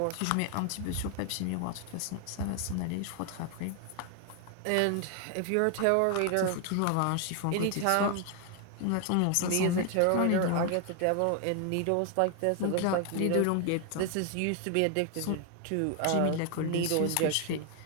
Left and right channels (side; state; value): both; different; correlation 0.01